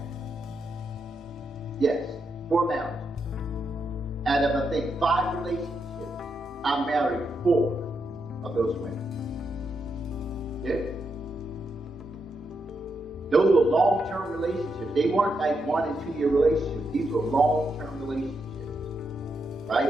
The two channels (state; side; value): normal; both; correlation 0.82